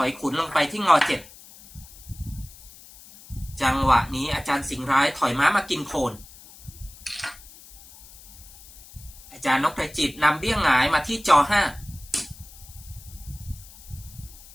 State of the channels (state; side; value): noise; left; hiss, 20 dB below the sound